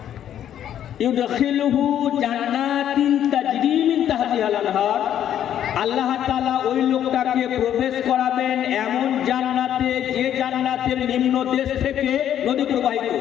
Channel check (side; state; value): right; quieter; 10.4 dB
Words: ইউদখিলুহু জান্নাতিন তাজরি মিন তাহতিহাল আনহার, আল্লাহ তাআলা ওই লোকটাকে প্রবেশ করাবেন এমন জান্নাতে, যে জান্নাতের নিম্ন দেশ থেকে নদী প্রবাহিত।